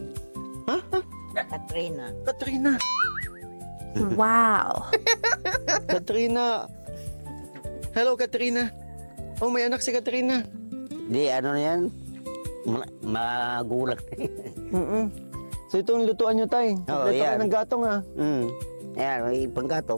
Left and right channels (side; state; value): both; inverted; correlation -1.00